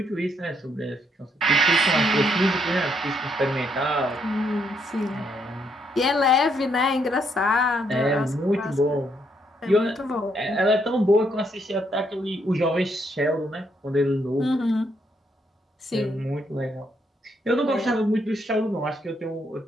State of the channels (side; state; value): both; normal; correlation 0.74